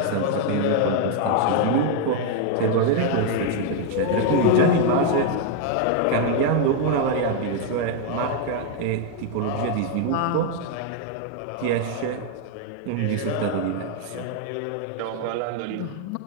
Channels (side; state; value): both; different; correlation 0.00